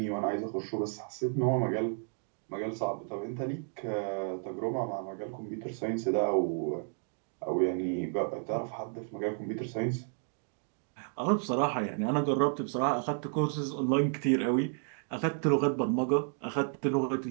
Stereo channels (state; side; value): silent; left; 56 dB below the other